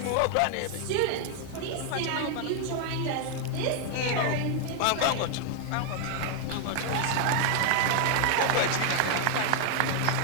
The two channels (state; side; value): different; both; correlation 0.00